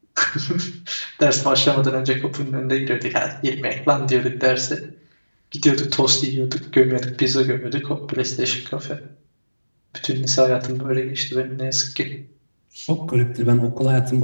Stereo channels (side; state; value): both; inverted; correlation -1.00